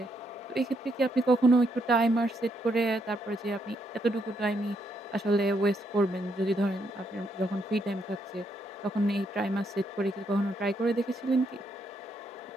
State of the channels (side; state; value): both; normal; correlation 0.76